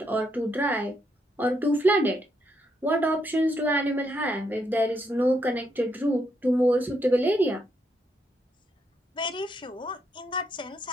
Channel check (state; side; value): normal; both; correlation 0.77